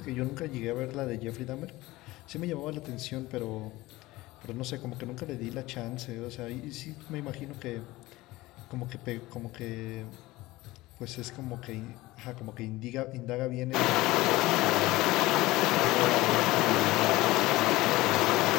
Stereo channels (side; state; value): right; quieter; 19.0 dB